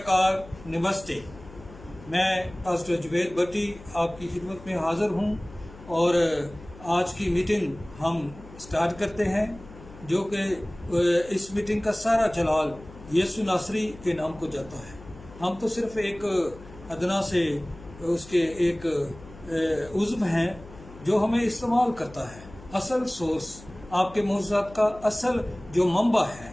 नमस्ते। मैं पास्टर जुबैर भट्टी आपकी खिदमत में हाज़िर हूँ और आज की मीटिंग हम स्टार्ट करते हैं, जो कि इस मीटिंग का सारा जलाल यीशु नासरी के नाम को जाता है। हम तो सिर्फ एक अदना से उसके एक उज़्व हैं जो हमें इस्तेमाल करता है। असल सोर्स, आपके मोज़ात का असल जो मंबा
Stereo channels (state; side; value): noise; left; hum, 19 dB below the sound